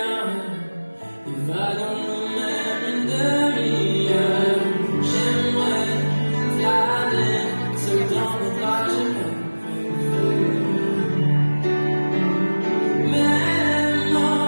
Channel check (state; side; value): inverted; both; correlation -1.00